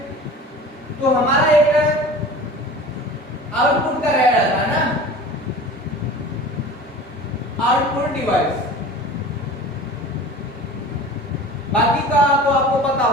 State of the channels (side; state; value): both; normal; correlation 0.39